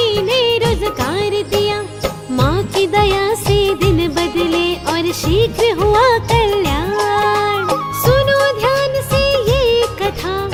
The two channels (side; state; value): both; identical; correlation 1.00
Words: ने रोजगार दिया। माँ की दया से दिन बदले और शीघ्र हुआ कल्याण। सुनो ध्यान से ये कथा,